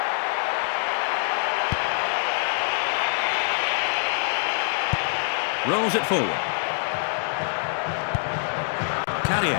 Rolls it forward.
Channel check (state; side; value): silent; right; digital silence